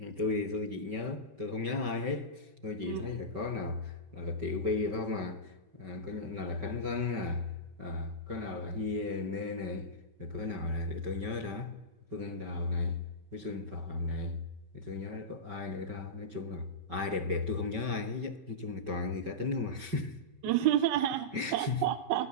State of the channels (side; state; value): left; late; 5.2 ms